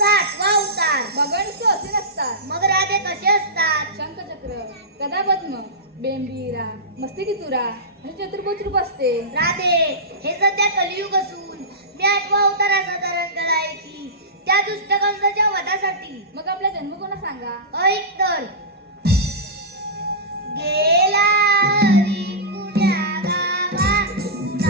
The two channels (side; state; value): both; normal; correlation -0.16